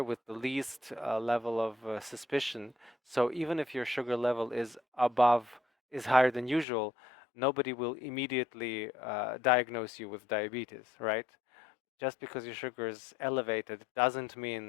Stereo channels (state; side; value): drops out; right; at 6.7 s